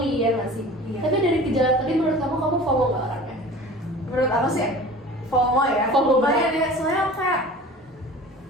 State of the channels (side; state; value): both; normal; correlation 0.41